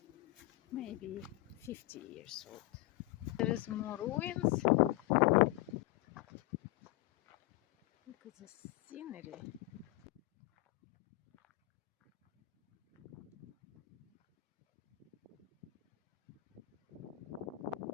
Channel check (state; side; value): quieter; right; 19.5 dB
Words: Maybe 50 years old. There is more ruins. Look at the scenery.